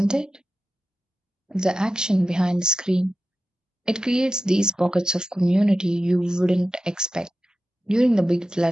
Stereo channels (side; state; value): both; normal; correlation 0.92